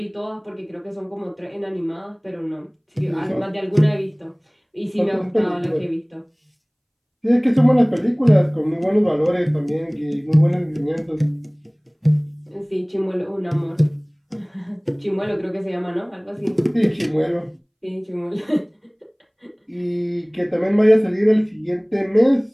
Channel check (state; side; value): identical; both; correlation 1.00